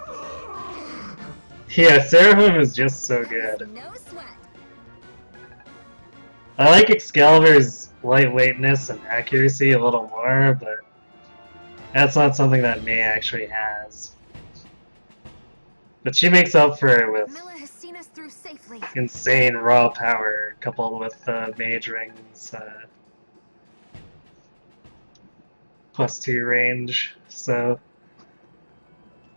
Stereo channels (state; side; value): inverted; both; correlation -1.00